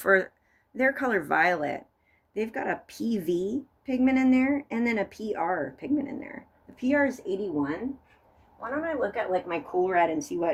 their color violet, they've got a PV pigment in there and then a PR pigment in there. The PR is 81. Why don't I look at like my cool red and see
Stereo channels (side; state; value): both; identical; correlation 1.00